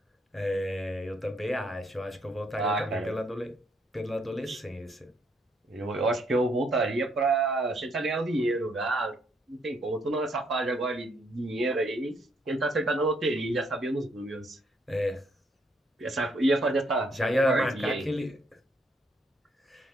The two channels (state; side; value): normal; both; correlation 0.71